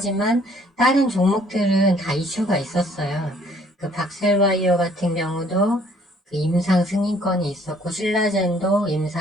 다른 종목들은 다 이슈가 있었어요. 그 박셀바이오 같은 경우도 그 임상 승인권이 있었고 신라젠도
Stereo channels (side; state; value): both; normal; correlation 0.60